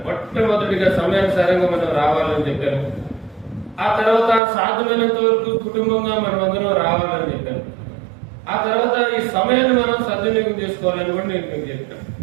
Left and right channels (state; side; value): drops out; left; at 4.4 s